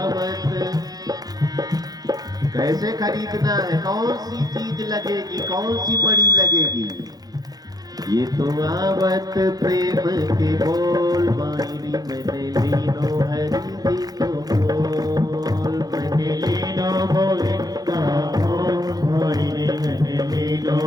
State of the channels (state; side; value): late; left; 0.19 ms